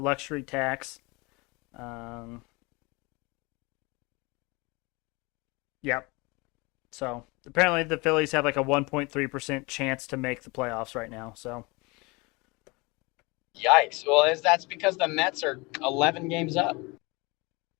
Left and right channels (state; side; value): quieter; right; 26.4 dB